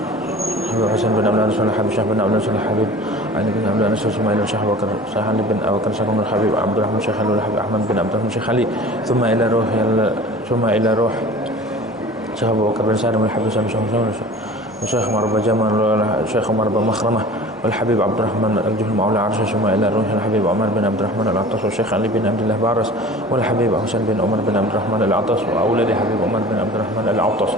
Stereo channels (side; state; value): both; normal; correlation 0.42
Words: حبيب حسين بن عبد رسول الحبيب شيخ بن عبد رسول الحبيب علي بن عبد رسول ثم إلى الشيخ أبو بكر شيخ علي بن أبو بكر شيخ الحبيب عبد الرحمن شيخ الحبيب أحمد بن عبد الرحمن شيخ علي ثم إلى روح شيخ أبو بكر بن سالم الحبيب الشيخ عمر بن جمال الشيخ عمر بن مخرمة والحبيب عبد الرحمن الجهل مولى عرش ثم إلى روح الحبيب عمر بن عبد الرحمن العطاس والشيخ علي بن عبد الله بارس والحبيب حسين بن عمر بن عبد الرحمن العطاس وأولاد حبيب عمر بن عبد الرحمن العطاس